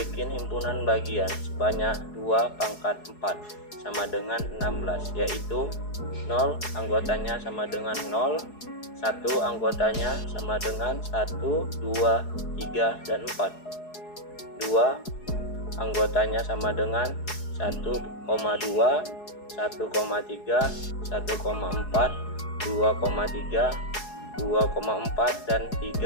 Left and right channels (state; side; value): late; right; 4.7 ms